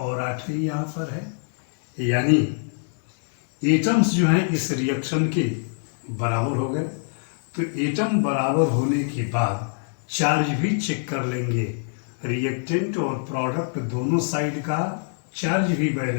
8 ही यहाँ पर है, यानी एटम्स जो हैं इस रिएक्शन के बराबर हो गए। तो एटम बराबर होने के बाद चार्ज भी चेक कर लेंगे, रिएक्टेंट और प्रोडक्ट दोनों साइड का चार्ज भी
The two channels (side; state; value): right; silent; digital silence